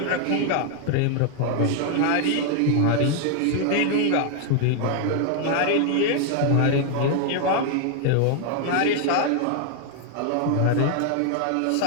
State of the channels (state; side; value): different; both; correlation 0.00